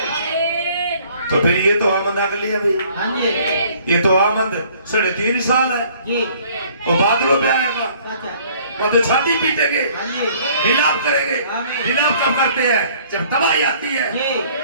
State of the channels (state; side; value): inverted; both; correlation -0.57